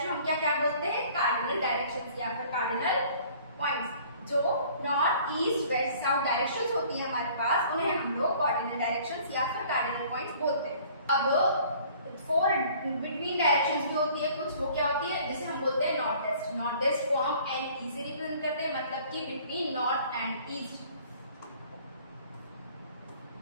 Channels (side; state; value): both; inverted; correlation -0.53